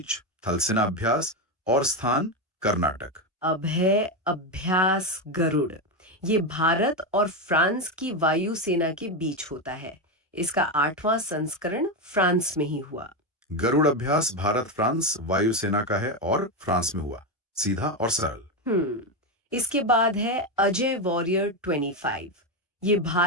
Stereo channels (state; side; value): normal; both; correlation 0.10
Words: थल सेना अभ्यास और स्थान कर्नाटक। अब है अभ्यास गरुड़। ये भारत और फ्रांस की वायुसेना के बीच होता है। इसका 8वां संस्करण फ्रांस में ही हुआ। गरुड़ अभ्यास भारत फ्रांस वायुसेना का है और फ्रांस में हुआ। सीधा और सरल। इसके बाद है अजय वॉरियर 25। ये